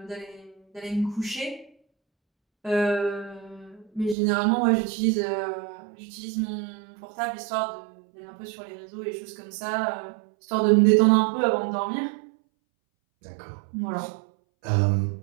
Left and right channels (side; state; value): left; drops out; at 4.2 s